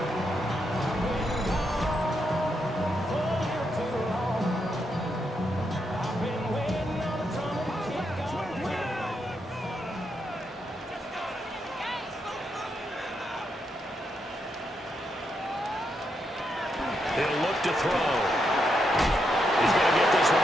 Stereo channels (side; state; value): both; normal; correlation 0.81